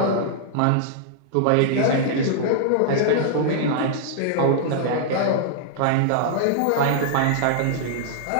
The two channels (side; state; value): both; different; correlation -0.01